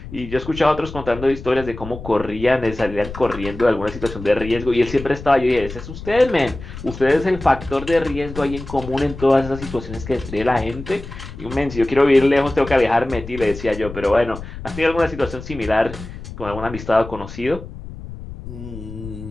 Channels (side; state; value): left; noise; rumble, 12 dB below the sound